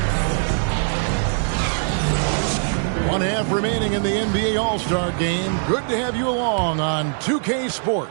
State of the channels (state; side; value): silent; left; digital silence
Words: Remaining in the NBA All-Star Game. Good to have you along on 2K